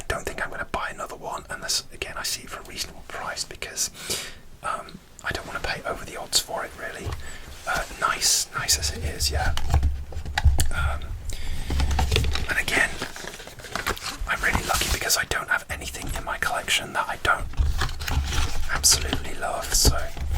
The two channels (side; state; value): both; identical; correlation 1.00